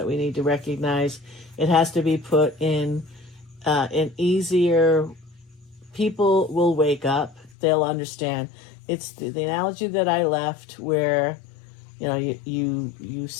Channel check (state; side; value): drops out; right; at 7.5 s